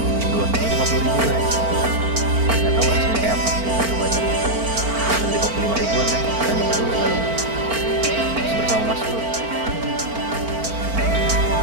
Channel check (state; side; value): late; left; 4.4 ms